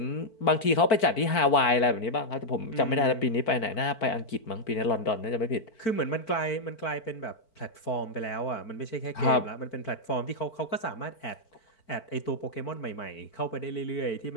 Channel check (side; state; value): right; late; 4.5 ms